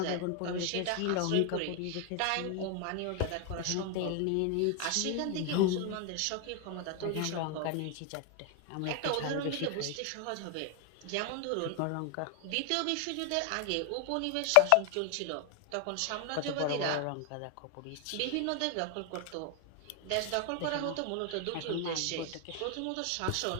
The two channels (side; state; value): both; different; correlation 0.01